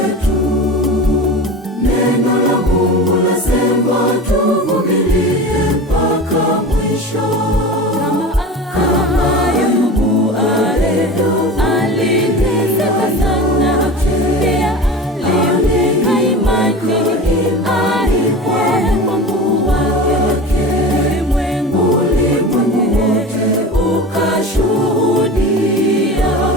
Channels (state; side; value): normal; both; correlation 0.32